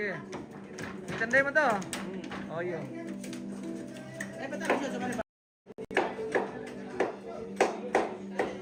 Itandai mo to. Oh, iya.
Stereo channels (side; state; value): both; identical; correlation 1.00